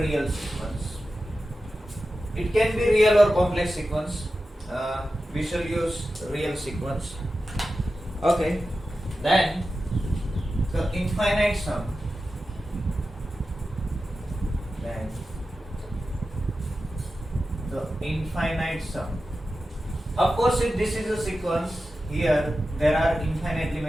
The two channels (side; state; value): both; normal; correlation 0.93